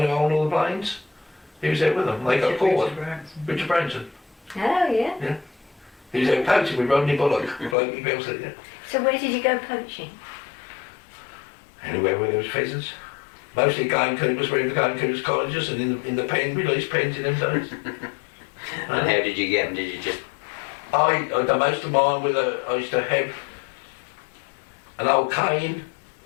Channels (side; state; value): right; drops out; at 7.8 s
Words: who owned all the planes. He was out with them. They got caught. Richard Branson. Oh yeah. Yeah. He was out poaching with Rodney Bullock. Yeah. So where did you go poaching? Anywhere where there was pheasants. Mostly gamekeepers were in the gamekeepers' cottages and in the pen, released pens in them days. And how did you get them? Did you just... I done most of mine with I used to have an old cane